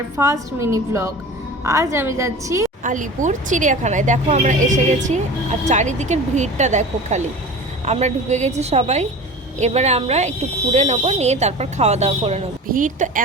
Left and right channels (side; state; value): both; normal; correlation 0.36